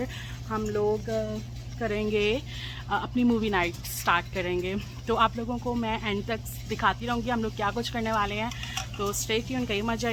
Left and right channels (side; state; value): both; identical; correlation 1.00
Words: हम लोग करेंगे अपनी मूवी नाइट स्टार्ट करेंगे। तो आप लोगों को मैं एंड तक दिखाती रहूँगी हम लोग क्या कुछ करने वाले हैं, तो स्टे ट्यून, कहीं मत